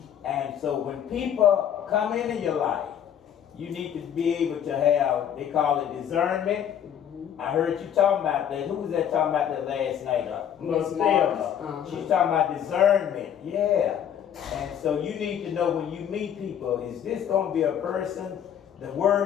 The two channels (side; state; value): right; quieter; 9.3 dB